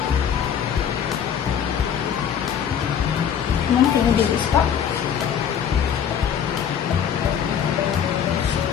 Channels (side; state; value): right; quieter; 8.4 dB